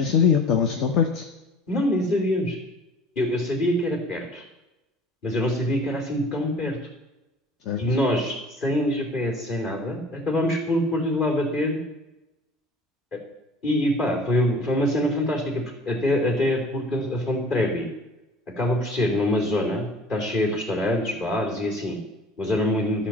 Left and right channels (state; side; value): normal; both; correlation 0.48